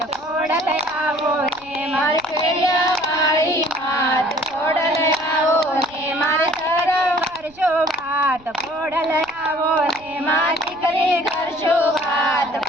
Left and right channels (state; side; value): noise; right; rumble, 26 dB below the sound